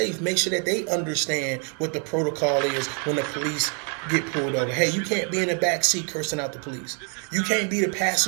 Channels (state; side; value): quieter; left; 39.7 dB